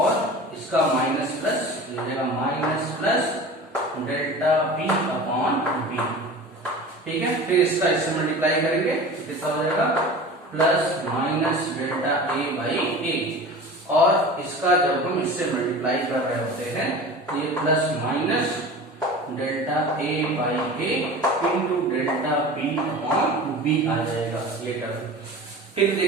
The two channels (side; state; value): both; normal; correlation 0.36